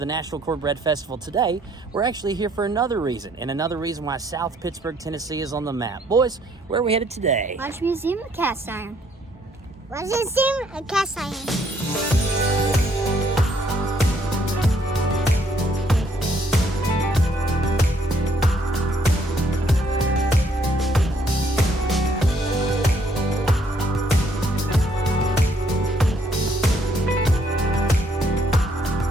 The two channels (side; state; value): both; normal; correlation 0.67